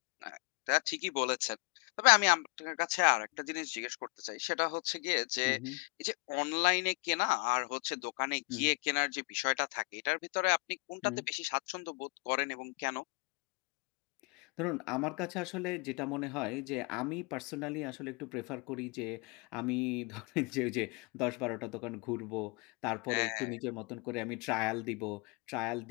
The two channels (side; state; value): right; quieter; 29.5 dB